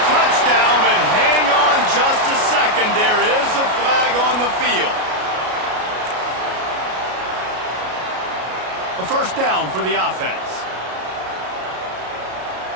touchdown, but hang on just a second. There is a flag on the field. A first down for the offense.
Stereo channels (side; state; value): left; late; 33 ms